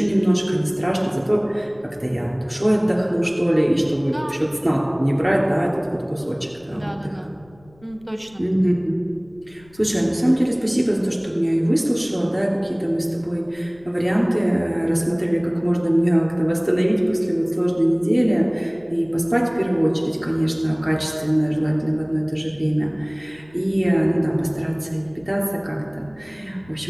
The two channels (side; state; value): left; noise; rumble, 28 dB below the sound